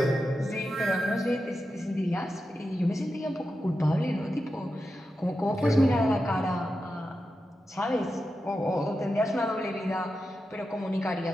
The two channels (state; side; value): normal; both; correlation 0.90